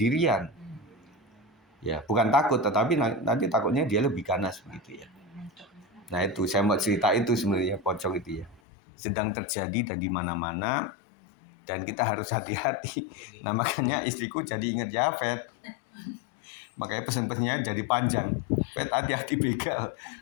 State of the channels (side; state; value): right; drops out; at 8.6 s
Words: Ya, bukan takut tetapi nanti takutnya dia lebih ganas begitu ya. Nah, itu saya mau cerita itu sebenarnya pocong itu ya. Sedang terjadi dan di mana-mana dan kita harus hati-hati. Nah, makanya istriku jadi ingat Jafet. Makanya pesan-pesannya jadi panjang. Fet hati-hati begal,